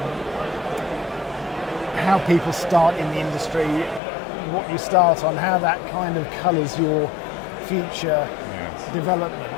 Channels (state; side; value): drops out; right; at 4.0 s